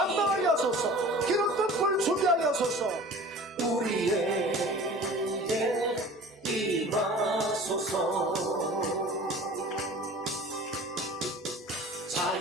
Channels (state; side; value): normal; both; correlation 0.42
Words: 하소서. 기름 뜰 준비하게 하소서. 우리에게 임하소서.